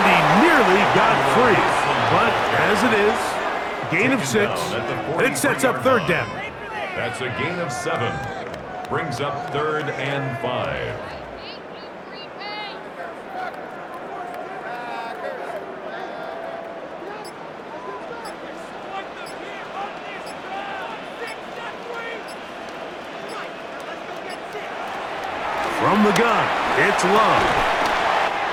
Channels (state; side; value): identical; both; correlation 1.00